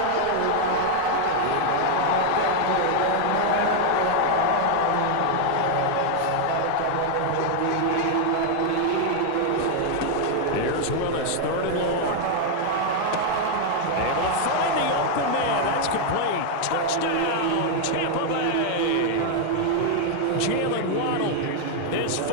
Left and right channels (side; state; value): both; different; correlation 0.00